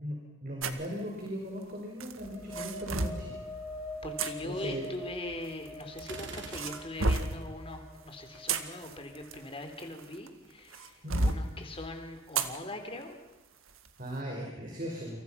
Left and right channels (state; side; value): normal; both; correlation 0.56